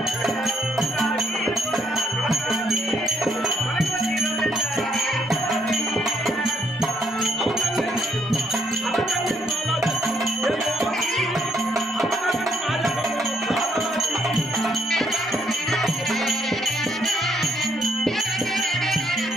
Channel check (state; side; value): normal; both; correlation 0.71